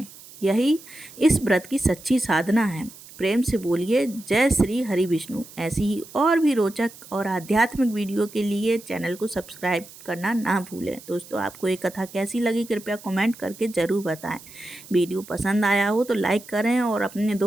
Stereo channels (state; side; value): noise; right; hiss, 19 dB below the sound